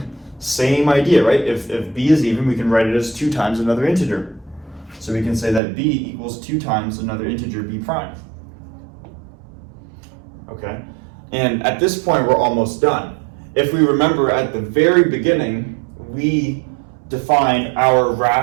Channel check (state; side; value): drops out; left; at 5.6 s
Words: same idea, right? If b is even, we can write it as 2 times another integer. So we can say that b equals 2 times another integer b prime. Okay? And at this point, we're almost done. If we remember at the very beginning, we define our